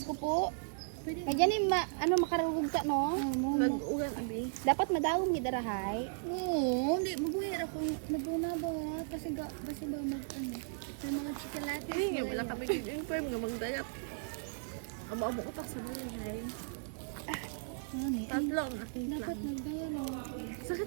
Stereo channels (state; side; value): silent; left; 54 dB below the other